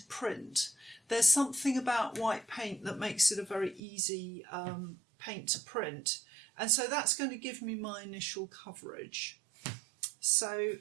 print. There's something about white paint that makes it a very easy paint to print, and so that's going to give me my initial coverage. So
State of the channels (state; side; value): drops out; left; at 3.8 s